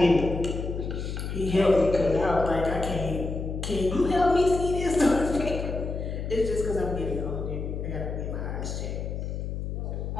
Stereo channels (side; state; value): left; noise; hum, 4 dB below the sound